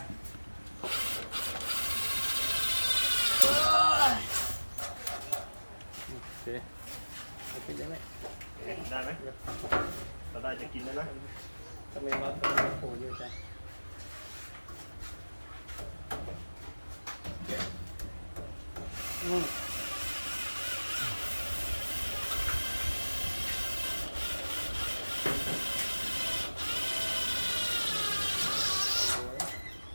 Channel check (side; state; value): both; inverted; correlation -1.00